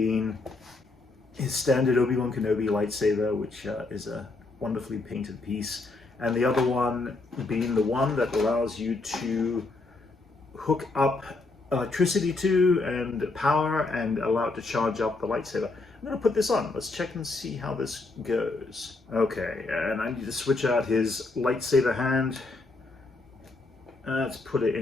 his standard Obi Wan Kenobi lightsaber, which is a wonderfully painted piece, and the other one being the one that allows you to hook up electricity to and power and allow it to charge up the lightsaber. I'm going to put this on. Let's check and see how this goes. Okay, and I need to switch out his lightsaber hand. Let's put it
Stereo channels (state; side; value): quieter; right; 3.4 dB